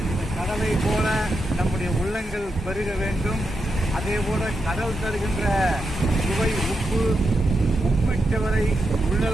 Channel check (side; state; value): both; normal; correlation 0.86